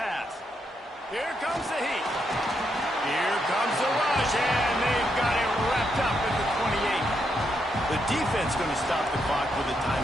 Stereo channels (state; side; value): normal; both; correlation 0.80